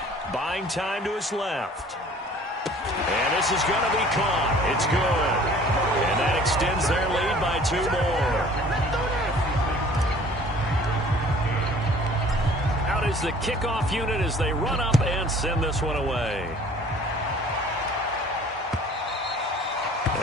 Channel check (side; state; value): both; normal; correlation 0.51